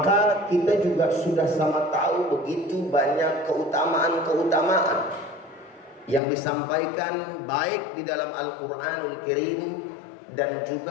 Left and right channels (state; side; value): drops out; right; at 6.2 s